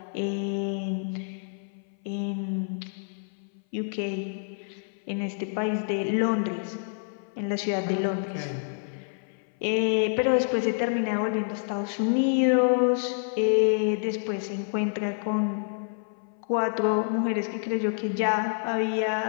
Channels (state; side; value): silent; right; 58 dB below the other